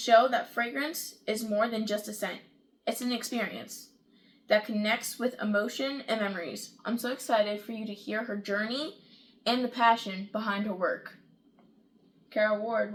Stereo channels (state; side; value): identical; both; correlation 1.00